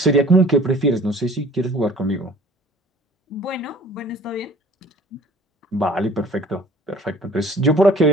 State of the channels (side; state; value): both; normal; correlation 0.50